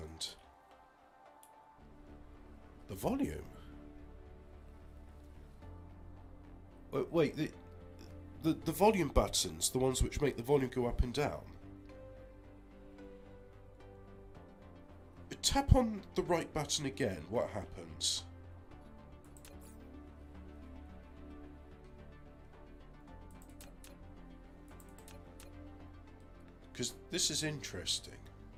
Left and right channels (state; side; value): identical; both; correlation 1.00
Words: The volume. Wait, the volume buttons, the ones which make the volume go up and down. Tap on the right button again, what happens? Because this is interesting.